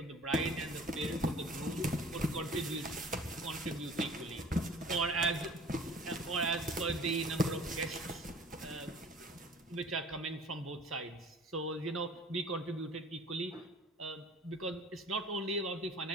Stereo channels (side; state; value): both; normal; correlation 0.48